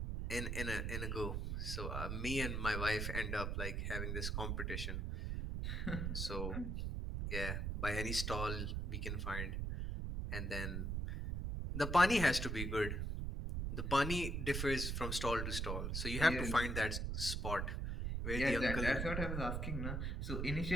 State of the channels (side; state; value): right; noise; rumble, 1 dB below the sound